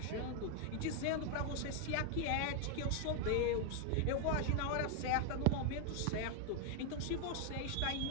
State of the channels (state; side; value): different; both; correlation 0.00